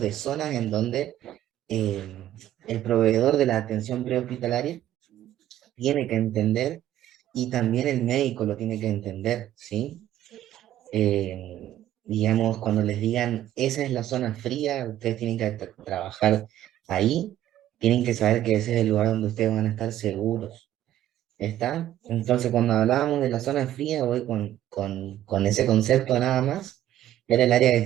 de zonas en donde el proveedor de la atención prehospitalaria tiene que entender y también el médico lo tiene que entender, ¿sí? Digamos, cuando les digan, esa es la zona fría, ustedes tienen que trabajar ahí, tienen que saber que ese es el lugar donde ustedes van a estar seguros, ¿está? Entonces, cuando hablábamos de la zona fría, voy con ese concepto nada más, era el área que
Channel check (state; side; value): quieter; left; 12.6 dB